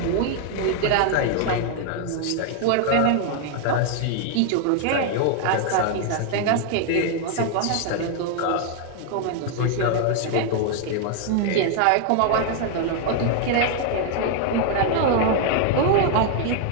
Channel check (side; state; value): both; different; correlation 0.00